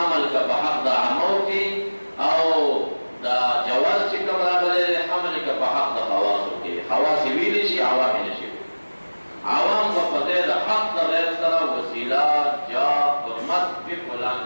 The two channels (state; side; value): inverted; both; correlation -1.00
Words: که په حق د عامو کې او دا جواز چې کوم راغلی دی حمل که په حق د خواصو کې. خواص یې ویلی شي، عوام یې نشي. عوام به په ځای د حق د غیر سره وسیله، جاه، حرمت په فلان